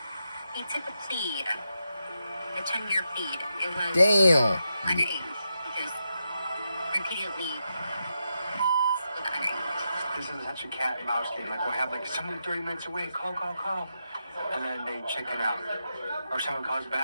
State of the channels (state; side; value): inverted; both; correlation -0.86